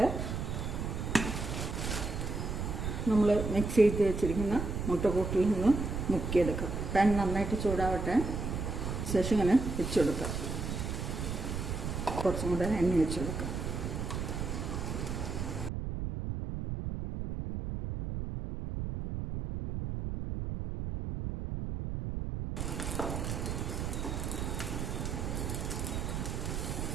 നമ്മൾ മിക്സ് ചെയ്ത് വെച്ചിരിക്കുന്ന മുട്ടക്കൂട്ടിൽ നിന്ന് മുക്കിയെടുക്കാം. പാൻ നന്നായിട്ട് ചൂടാവട്ടെ. ശേഷം ഇങ്ങനെ വെച്ച് കൊടുക്കാം. കുറച്ചും കൂടെ എണ്ണ വെച്ച് കൊടുക്കാം.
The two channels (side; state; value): right; noise; rumble, 3 dB below the sound